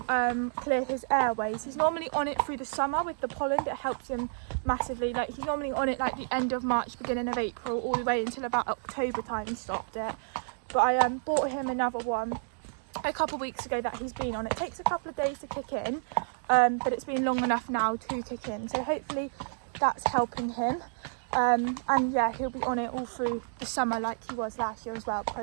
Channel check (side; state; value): left; silent; digital silence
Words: clear his airways. He's normally on it through the summer with the pollen. It helps him massively. Like, he's normally on it like the end of March, beginning of April, all the way until about October time he stopped it. But I bought him another one a couple of weeks ago that he's been on. It takes a couple of days to kick in, but it's been long enough now to kick in. So hopefully that's helping him. And yeah, he'll be on it all through the summer like he was last year as well,